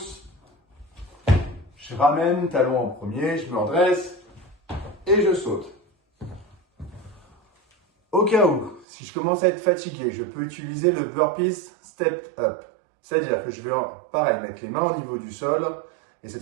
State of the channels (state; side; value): drops out; left; at 8.8 s